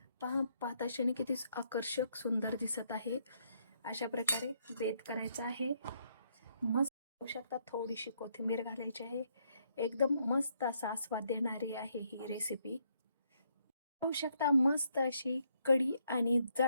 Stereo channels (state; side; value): inverted; both; correlation -0.73